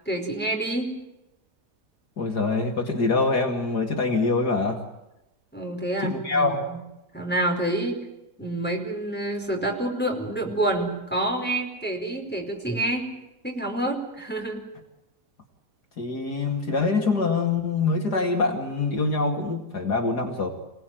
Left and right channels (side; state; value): both; normal; correlation 0.05